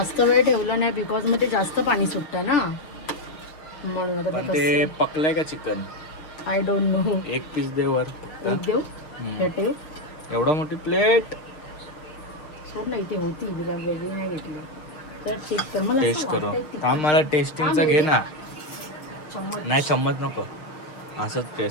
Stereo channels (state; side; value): late; right; 6.5 ms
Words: वेळ ठेवलं नाही बिकॉज मग ते जास्त पाणी सुटतं ना, म्हणून पण ते पकलंय का चिकन. I don't know. एक पीस दे वर. देऊ हम्म. हे ठेव. एवढा मोठी प्लेट. सोड नाही ती होती वेगळी नाही घेतली तर चेक कर. मला टेस्ट करू. थांब, मला टेस्टिंगचा घे ना. नाही चम्मच नको, असंच